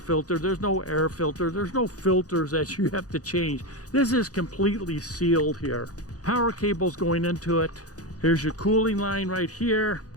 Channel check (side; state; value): right; late; 0.67 ms